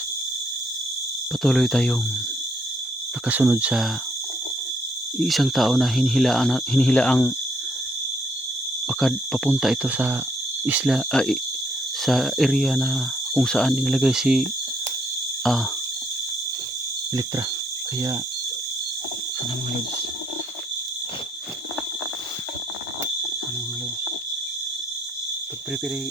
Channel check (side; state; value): both; normal; correlation 0.69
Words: patuloy tayong nakasunod sa isang tao na hinihilaang papunta ito sa isla, sa area na kung saan inilagay si Elektra. Kaya sana mga lods,